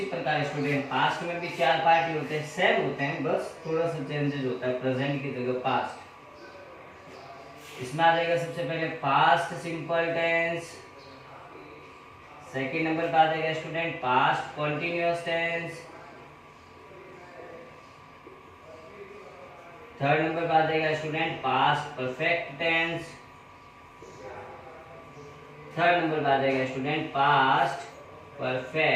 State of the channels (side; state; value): both; identical; correlation 1.00